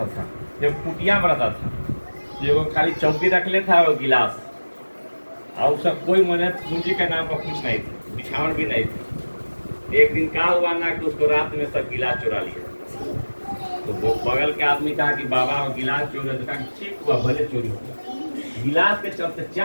था, जब कुटिया में रहता था जो खाली चौकी रख लेता और गिलास और उसका कोई मने पूंजी के नाम पर कुछ नहीं था, बिछावन भी नहीं था। एक दिन क्या हुआ ना कि उसको रात में सब गिलास चुरा लिया। तो वो बगल के आदमी कहा कि बाबा वो गिलास चोरी, तो कहा ठीक हुआ भले चोरी हुआ। गिलास के चलते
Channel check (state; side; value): inverted; both; correlation -1.00